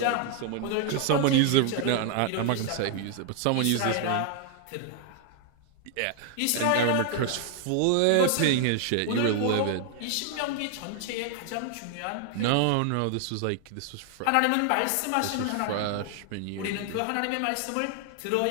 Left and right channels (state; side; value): different; both; correlation 0.00